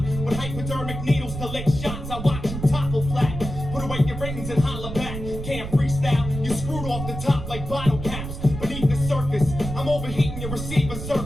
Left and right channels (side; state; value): right; noise; rumble, 7 dB below the sound